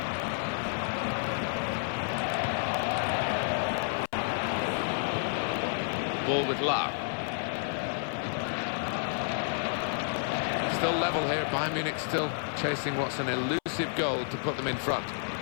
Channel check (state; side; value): silent; right; 58 dB below the other